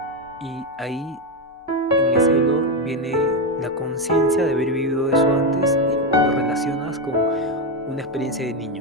Y ahí, en ese olor, viene la conciencia de haber vivido eso antes, y lo relacionas con una experiencia de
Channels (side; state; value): both; normal; correlation 0.09